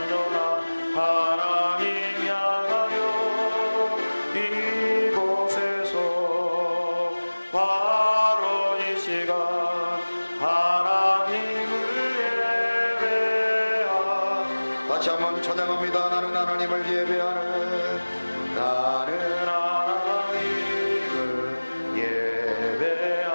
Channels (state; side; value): inverted; both; correlation -1.00